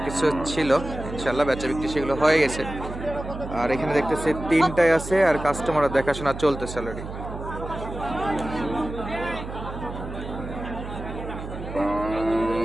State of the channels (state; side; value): noise; right; hum, 9 dB below the sound